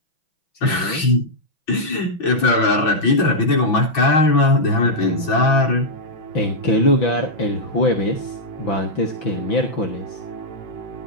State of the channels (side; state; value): right; late; 6.1 ms